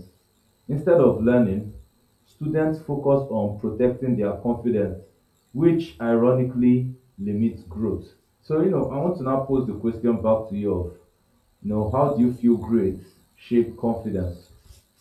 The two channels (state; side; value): identical; both; correlation 1.00